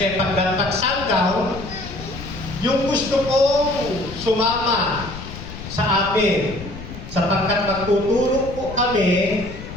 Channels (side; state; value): left; noise; rumble, 11 dB below the sound